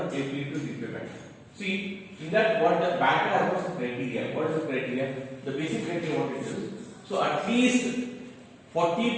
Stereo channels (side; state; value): both; identical; correlation 1.00